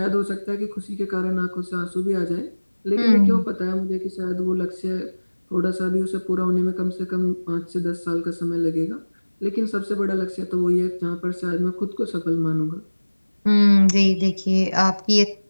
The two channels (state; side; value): inverted; both; correlation -1.00